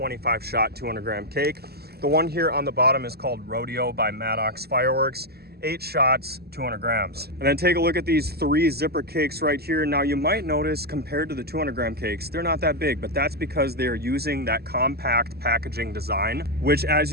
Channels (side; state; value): left; late; 0.46 ms